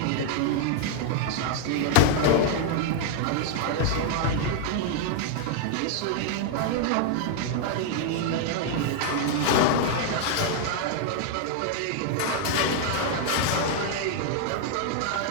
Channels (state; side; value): different; both; correlation 0.00